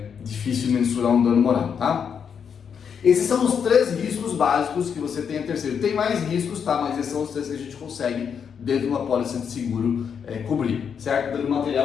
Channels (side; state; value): right; quieter; 7.2 dB